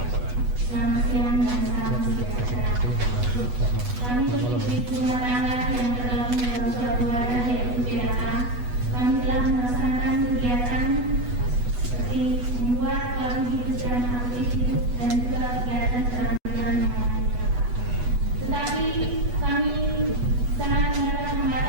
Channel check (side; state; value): left; late; 8.2 ms